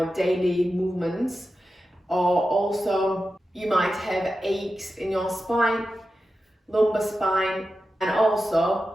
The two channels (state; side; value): normal; both; correlation 0.91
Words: daily movements, or also you might have aches in your spine, lumbar spine, and